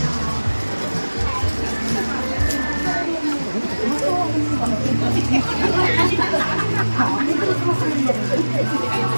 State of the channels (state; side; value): inverted; both; correlation -1.00